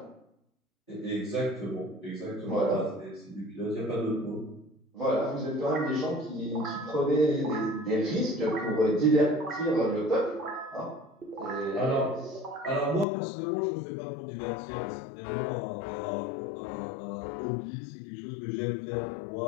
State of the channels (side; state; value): right; drops out; at 13.1 s